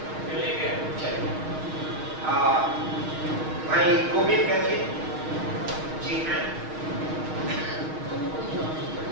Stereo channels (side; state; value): left; late; 6.5 ms